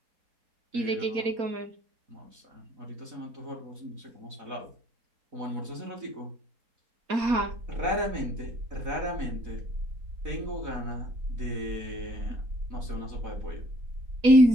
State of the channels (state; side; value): late; left; 4.3 ms